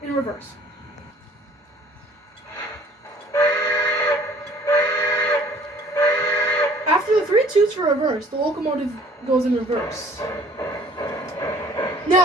in reverse. After the 3 toots for reverse, the locomotive goes in reverse.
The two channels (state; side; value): normal; both; correlation 0.54